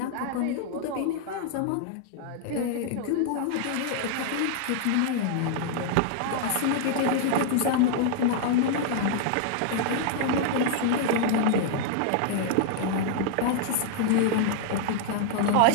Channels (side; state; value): both; different; correlation -0.01